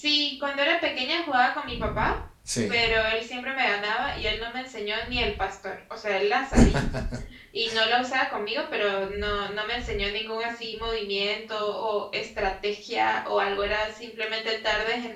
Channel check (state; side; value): identical; both; correlation 1.00